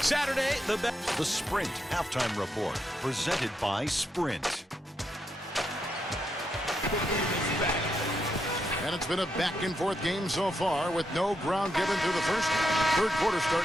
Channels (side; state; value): both; normal; correlation 0.82